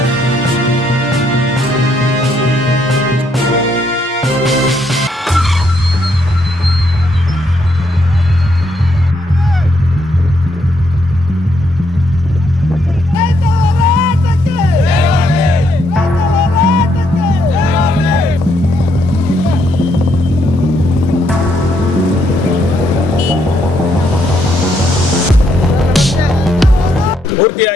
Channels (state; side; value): normal; both; correlation 0.74